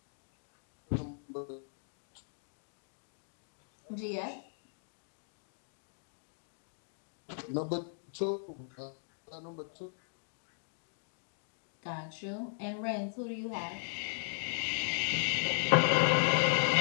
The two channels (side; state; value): right; silent; digital silence